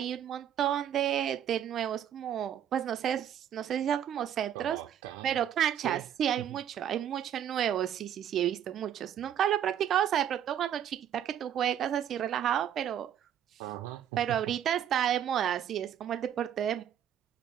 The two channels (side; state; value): left; quieter; 9.9 dB